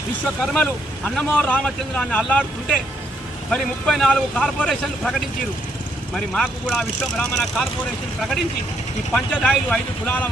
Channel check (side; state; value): both; normal; correlation 0.73